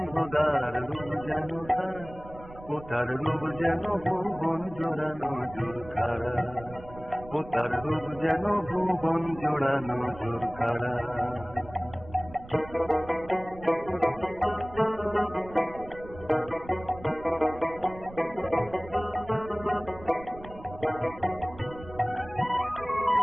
রূপ যেন তার, ও তার রূপ যেন ভুবন জোড়ানো ঝুঁকারা, ও তার রূপ যেন ভুবন জোড়ানো ঝুঁকারা।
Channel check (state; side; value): noise; right; rumble, 17 dB below the sound